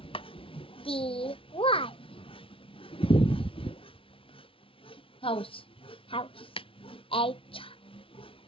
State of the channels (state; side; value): late; right; 0.26 ms